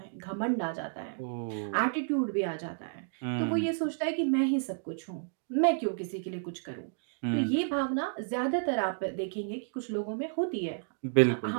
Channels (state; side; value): silent; left; digital silence